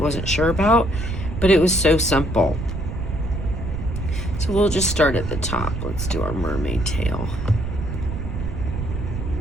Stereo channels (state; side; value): noise; right; rumble, 5 dB below the sound